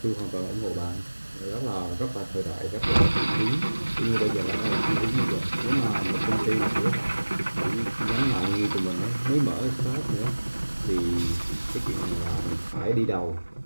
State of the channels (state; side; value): inverted; both; correlation -1.00